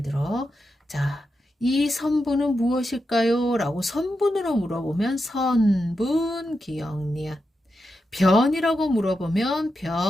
들어 자, 이 선분은 무엇일까요? 라고 선분으로 물어보면 선분, 기역, 니은. 변이라고 물어보면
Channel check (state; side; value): normal; both; correlation 0.87